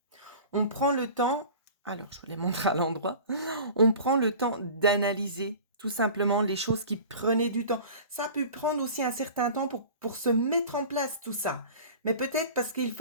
On prend le temps, alors je vous les montre à l'endroit, on prend le temps d'analyser tout simplement les choses qui prenaient du temps. Ça a pu prendre aussi un certain temps pour se mettre en place tout ça. Mais peut-être parce qu'il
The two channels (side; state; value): both; inverted; correlation -0.40